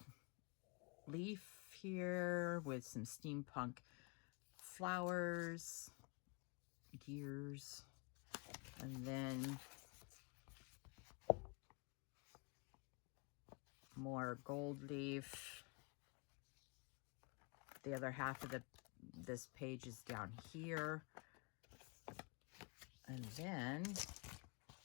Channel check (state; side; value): quieter; right; 32.2 dB